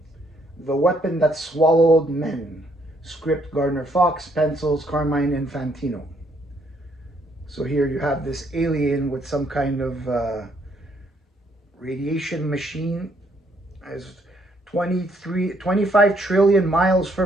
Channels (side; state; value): both; normal; correlation 0.70